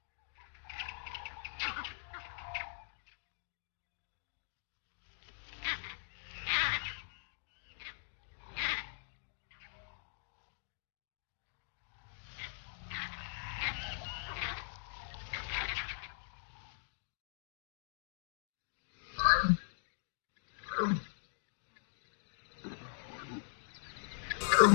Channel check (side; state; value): right; silent; digital silence